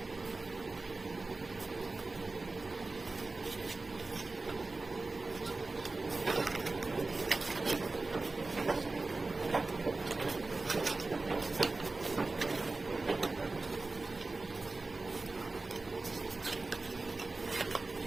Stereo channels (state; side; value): quieter; left; 3.4 dB